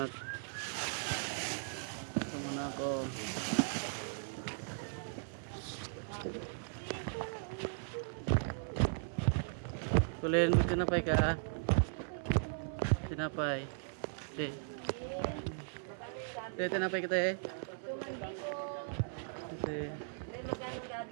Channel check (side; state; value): left; silent; 53 dB below the other